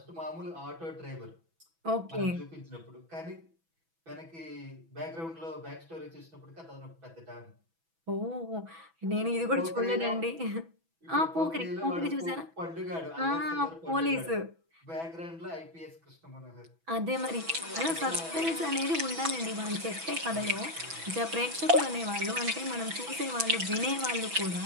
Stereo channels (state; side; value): late; left; 6.1 ms